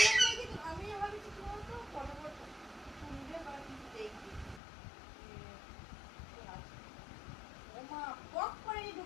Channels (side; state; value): right; drops out; at 4.6 s